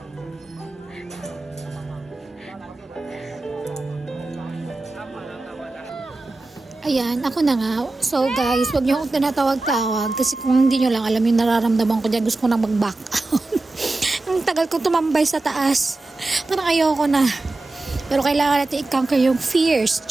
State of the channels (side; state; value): left; quieter; 3.1 dB